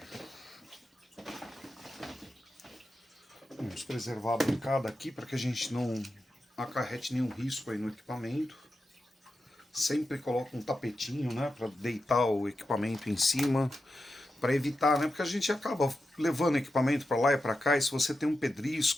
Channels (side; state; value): both; normal; correlation 0.89